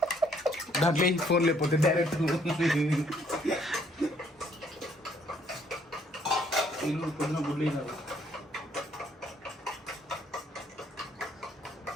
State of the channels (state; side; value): normal; both; correlation 0.66